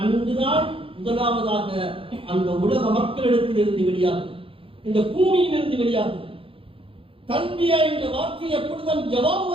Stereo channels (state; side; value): late; left; 0.26 ms